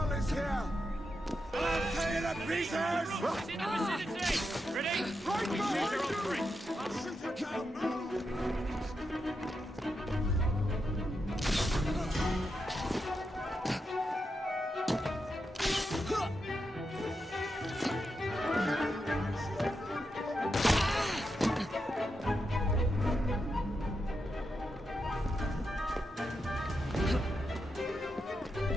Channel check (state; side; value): normal; both; correlation 0.86